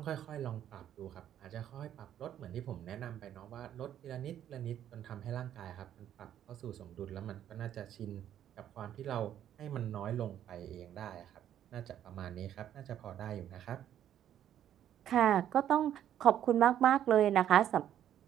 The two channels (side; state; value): left; quieter; 10.7 dB